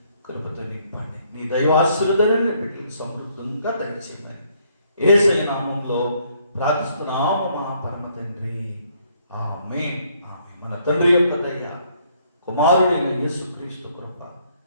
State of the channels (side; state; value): both; inverted; correlation -0.68